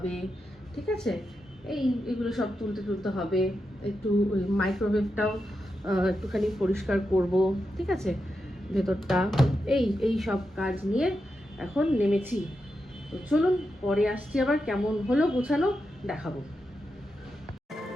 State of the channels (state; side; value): normal; both; correlation 0.87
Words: ঠিক আছে? এইগুলো সব তুলতে হবে, একটু ওই মাইক্রোওয়েভটাও একটুখানি পরিষ্কার করব, ঠিক আছে? ভেতরটা এই সব কাজ নিয়ে এখন নেমেছি। তো চলুন পরে আসছি, আবার কেমন হলো গোছানো দেখাবো।